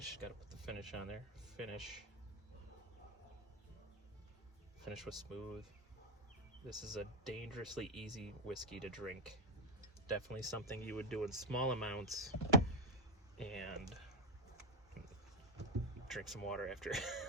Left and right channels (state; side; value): normal; both; correlation 0.09